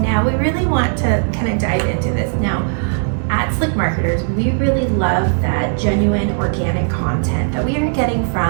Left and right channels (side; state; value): left; silent; 58 dB below the other